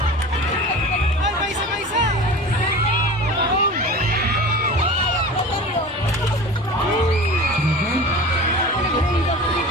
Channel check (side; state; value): both; normal; correlation 0.35